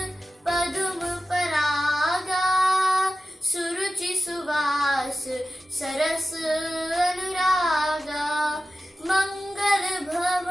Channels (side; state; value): both; normal; correlation 0.93